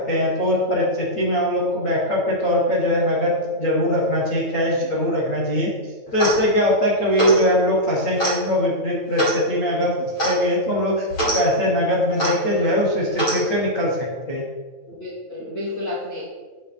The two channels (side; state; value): right; late; 9.0 ms